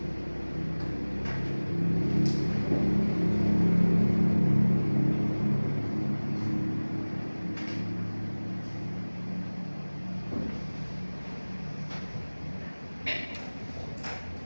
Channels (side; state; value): both; inverted; correlation -1.00